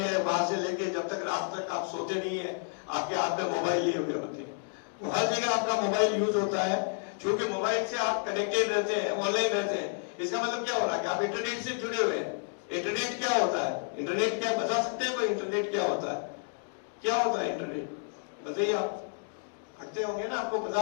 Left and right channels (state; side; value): silent; right; 57 dB below the other